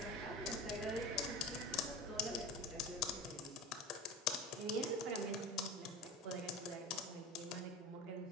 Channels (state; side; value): normal; both; correlation 0.33